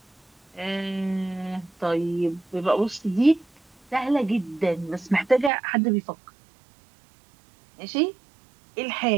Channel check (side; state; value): left; drops out; at 5.5 s